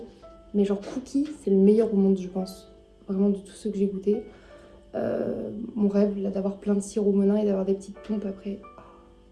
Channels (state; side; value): identical; both; correlation 1.00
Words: Mais genre cookie, c'est le meilleur au monde, je pense. Vraiment de tous ceux que j'ai goûtés. Mon rêve, là, d'avoir plein de sirop Monin et d'avoir des petites pompes après. Oh,